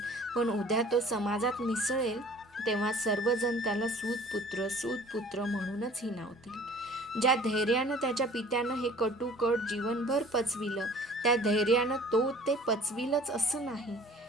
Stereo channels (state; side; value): normal; both; correlation 0.49